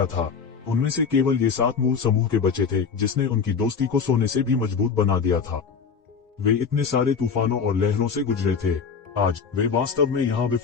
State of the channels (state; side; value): quieter; right; 6.0 dB